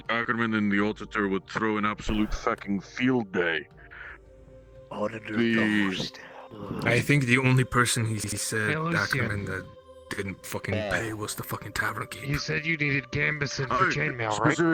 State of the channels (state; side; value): identical; both; correlation 1.00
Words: Ackerman and the auditor would throw an absolute fucking field day. Auditor The Ghost. I think the only person he said Hey, Lucian. Ackerman that didn't fucking pay was the fucking tavern keep. You said you needed Gambison for chainmail, right?